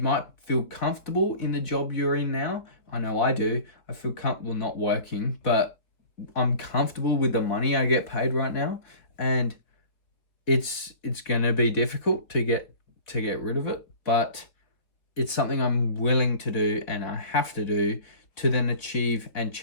feel comfortable in the job you're in now. I know I do. I feel comfortable not working, but I'm comfortable with the money I get paid right now, and it's going to be difficult to get rid of it, but it's something I'm willing to do, and I have to do to then achieve and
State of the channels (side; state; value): right; late; 3.9 ms